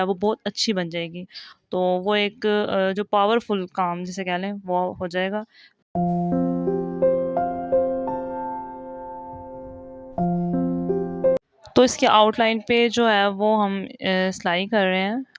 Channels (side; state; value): both; identical; correlation 1.00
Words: वो बहुत अच्छी बन जाएगी। तो वो एक जो पावरफुल काम जिसे कह लें वो हो जाएगा। तो इसके आउटलाइन पे जो है वो हम सिलाई कर रहे हैं,